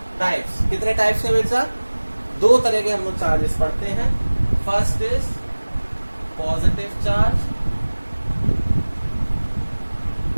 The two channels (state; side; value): inverted; both; correlation -1.00